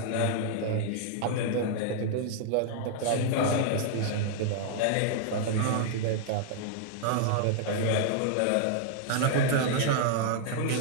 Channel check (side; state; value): both; different; correlation -0.01